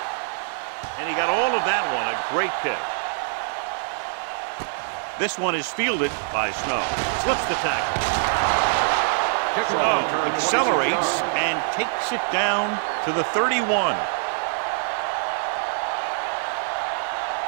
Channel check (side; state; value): left; silent; 62 dB below the other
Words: And he got all of that one, a great kick. This one is fielded by Snow. Slips the tackle. Snow accelerates and takes it down to the 31.